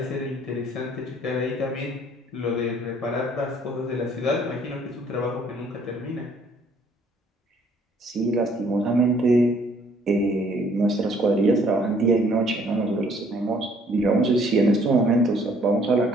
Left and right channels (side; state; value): both; normal; correlation 0.61